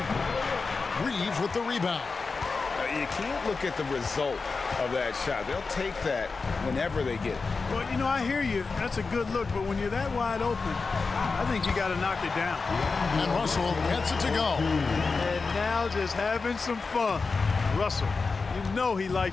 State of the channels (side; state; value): right; quieter; 4.4 dB